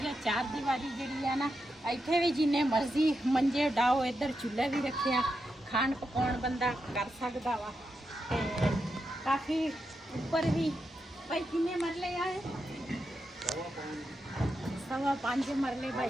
ਆ। ਚਾਰ ਦੀਵਾਰੀ ਜਿਹੜੀ ਆ ਨਾ ਇੱਥੇ ਵੀ ਜਿੰਨੇ ਮਰਜ਼ੀ ਮੰਜੇ ਡਾਓ। ਇੱਧਰ ਚੁੱਲ੍ਹਾ ਵੀ ਰੱਖਿਆ, ਖਾਣ ਪਕਾਉਣ ਬੰਦਾ ਕਰ ਸਕਦਾ ਵਾ। ਤੇ ਕਾਫੀ ਉੱਪਰ ਵੀ ਭਾਈ ਕਿੰਨੇ ਮਰਲੇ ਆ? 5.5 ਮਰਲੇ ਭਾਈ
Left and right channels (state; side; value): normal; both; correlation 0.86